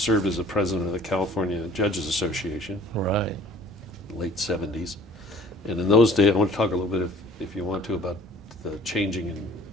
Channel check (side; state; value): both; normal; correlation 0.53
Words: as the president of the California Judges Association. Right. Late '70s, and in those days, I want to talk a little bit, if you want to, about the changing in